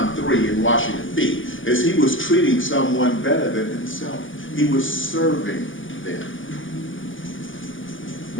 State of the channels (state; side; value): late; right; 0.57 ms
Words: 3 in washing the feet is he was treating someone better than himself. He was serving them.